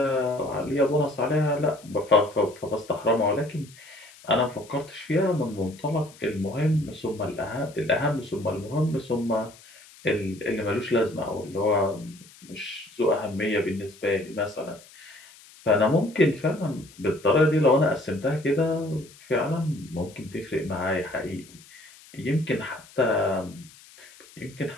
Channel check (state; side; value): noise; left; hiss, 23 dB below the sound